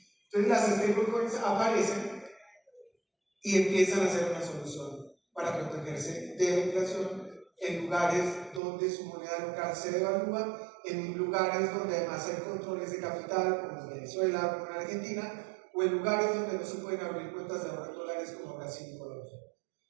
Entonces las stablecoins aparecen y empiezan a ser una solución para protegerse de la inflación en lugares donde su moneda local se devalúa, en lugares donde además hay controles de capital, como en Venezuela, como en Argentina, o en lugares donde no se pueden abrir cuentas de ahorro en dólares como Brasil y Colombia.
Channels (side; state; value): left; drops out; at 8.6 s